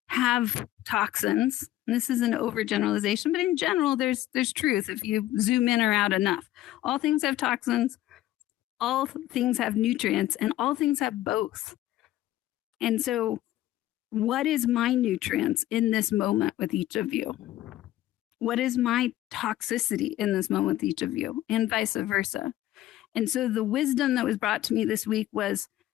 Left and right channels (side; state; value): right; quieter; 14.6 dB